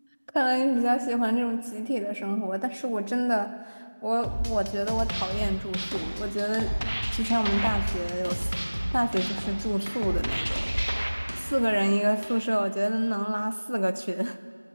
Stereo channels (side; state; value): both; inverted; correlation -1.00